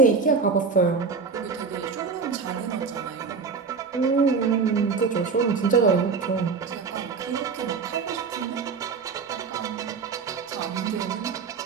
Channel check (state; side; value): quieter; left; 5.2 dB